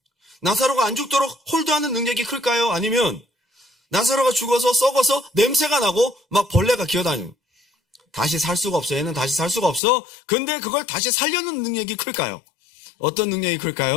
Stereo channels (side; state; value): right; drops out; at 9.8 s